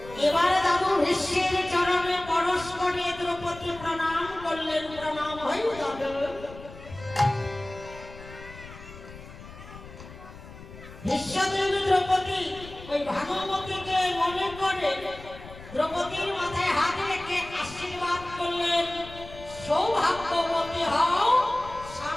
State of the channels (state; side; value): noise; left; rumble, 16 dB below the sound